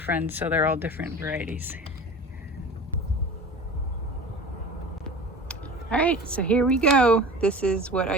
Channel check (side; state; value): both; normal; correlation 0.36